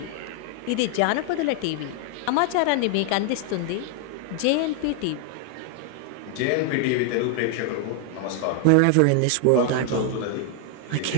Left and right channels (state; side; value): different; both; correlation 0.00